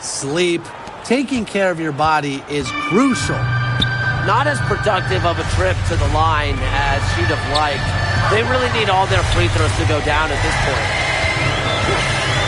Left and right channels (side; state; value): both; identical; correlation 1.00